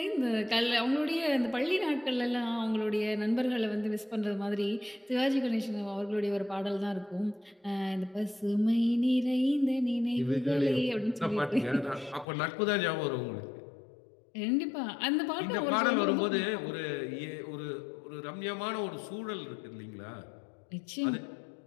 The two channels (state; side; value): drops out; right; at 12.2 s